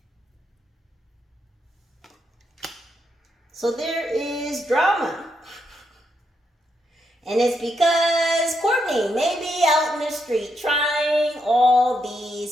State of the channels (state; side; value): normal; both; correlation 0.80